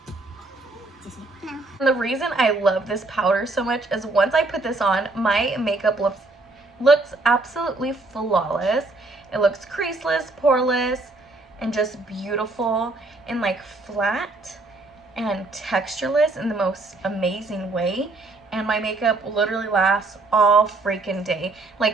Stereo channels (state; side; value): quieter; left; 3.2 dB